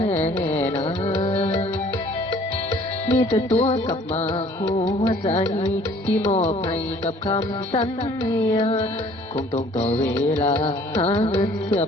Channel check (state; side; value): normal; both; correlation 0.55